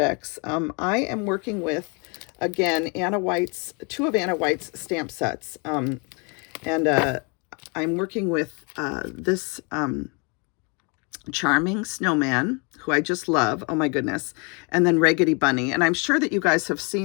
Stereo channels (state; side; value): quieter; right; 33.1 dB